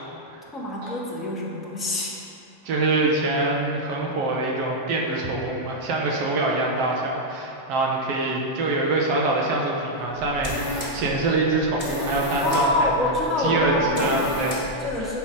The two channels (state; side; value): late; left; 2.5 ms